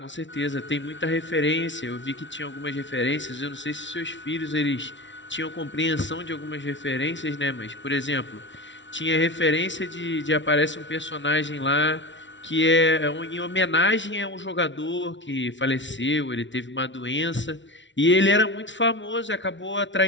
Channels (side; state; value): right; late; 0.54 ms